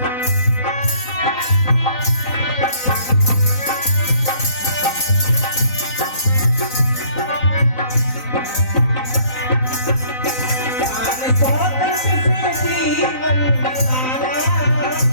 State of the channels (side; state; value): right; late; 3.9 ms